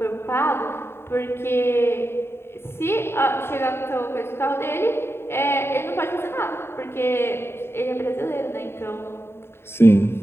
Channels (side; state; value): right; late; 0.11 ms